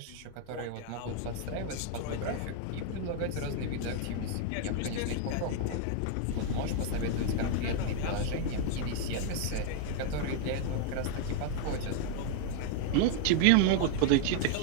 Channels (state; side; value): different; both; correlation 0.00